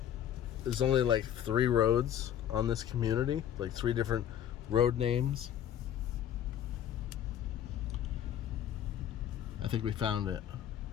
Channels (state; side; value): quieter; right; 10.1 dB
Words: There's only like 3 roads on this community, like 3 different road names. I think we found it.